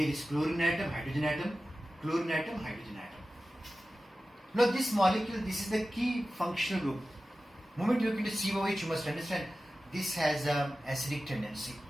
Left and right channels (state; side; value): normal; both; correlation 0.95